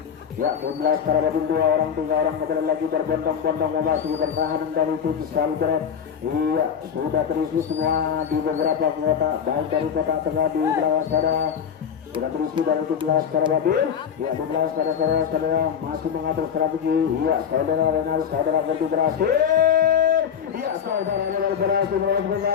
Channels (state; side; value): quieter; right; 7.8 dB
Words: Ya, tim Laskar Abadil 2 orang 3 orang kembali lagi berbondong-bondong memasuki pertahanan dari tim Salbret. Iya, sudah terisi semua di beberapa kota, baik dari kota tengah di belakang sana sudah terisi dari tim Laskar Abadil. Ya, tim Laskar saudara masih mengatur strategi. Iya, saudara Renal, saudara Ferdi berhasil. Iya, saudara Renal berhasil melakukan